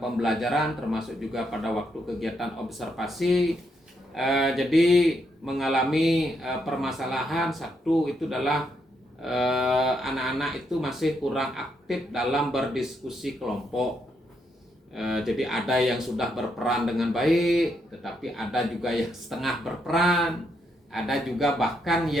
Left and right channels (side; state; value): both; normal; correlation 0.78